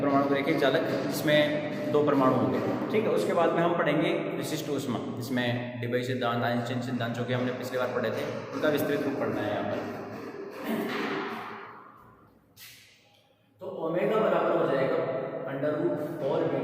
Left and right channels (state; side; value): identical; both; correlation 1.00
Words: रेखीय चालक जिसमें 2 परमाणु होंगे, ठीक है। उसके बाद में हम पढ़ेंगे विशिष्ट ऊष्मा, जिसमें डिबई सिद्धांत, आइंस्टीन सिद्धांत जो कि हमने पिछली बार पढ़े थे, उनका विस्तृत रूप पढ़ना है यहाँ पर। तो ओमेगा बराबर हो जाएगा under root 4